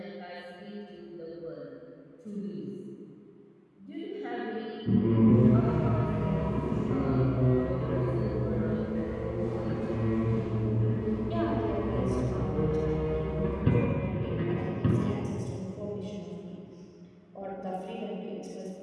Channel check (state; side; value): identical; both; correlation 1.00